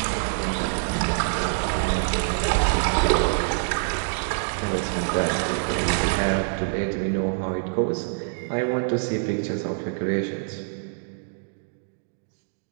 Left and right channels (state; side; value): silent; left; digital silence